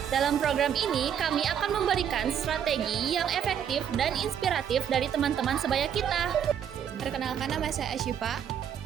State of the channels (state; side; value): quieter; left; 8.7 dB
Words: Dalam program ini, kami akan memberikan strategi yang efektif dan inspiratif dari teman-teman sebaya kita. Perkenalkan, nama saya Asyifa.